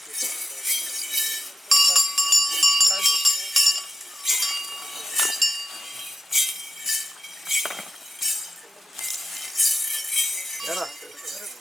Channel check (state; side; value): normal; both; correlation 0.86